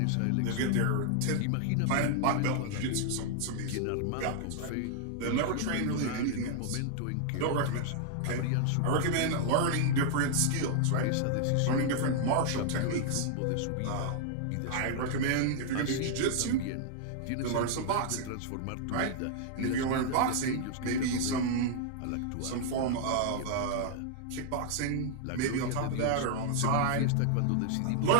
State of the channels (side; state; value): both; different; correlation -0.01